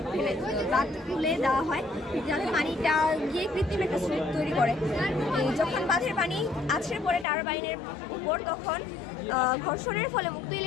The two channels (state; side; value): drops out; right; at 7.2 s